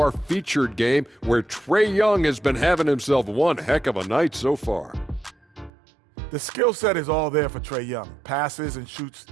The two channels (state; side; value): drops out; left; at 5.7 s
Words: featured game where Trae Young has been having himself one heck of a night so far. The skill set is all there for Trae Young. Passes and shoots